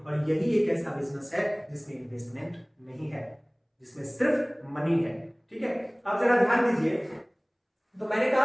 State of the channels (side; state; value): both; identical; correlation 1.00